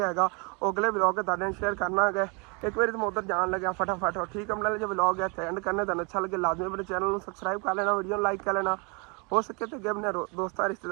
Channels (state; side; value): quieter; left; 31.8 dB